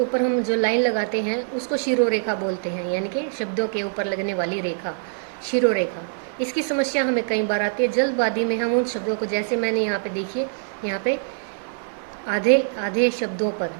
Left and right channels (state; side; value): silent; left; digital silence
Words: हम जो लाइन लगाते हैं उसको शिरोरेखा बोलते हैं, यानी कि शब्दों के ऊपर लगने वाली रेखा, शिरोरेखा। इसकी समस्या हमें कई बार आती है। जल्दबाजी में हम उन शब्दों को, जैसे मैंने यहाँ पे देखिए, यहाँ पे आधे आधे शब्दों पर